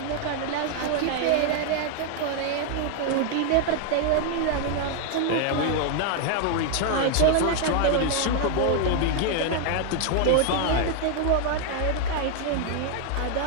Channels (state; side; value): different; both; correlation 0.00